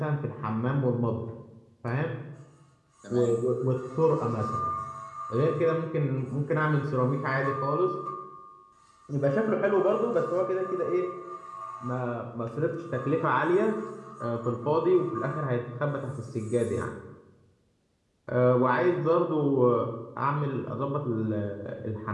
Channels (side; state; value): both; identical; correlation 1.00